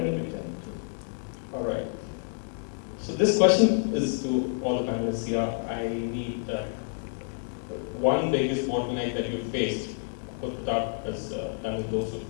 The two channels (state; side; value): silent; right; 59 dB below the other